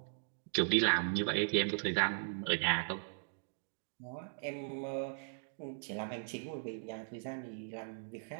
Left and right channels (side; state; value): left; silent; digital silence